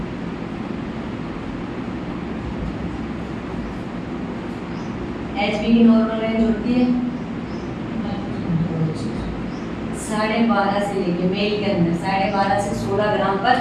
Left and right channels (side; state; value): both; identical; correlation 1.00